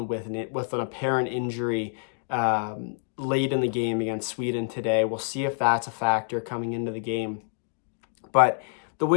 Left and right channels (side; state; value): right; silent; digital silence